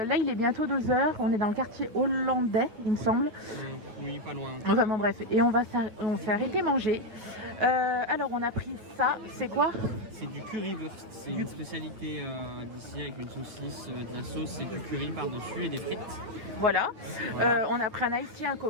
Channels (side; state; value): left; late; 9.0 ms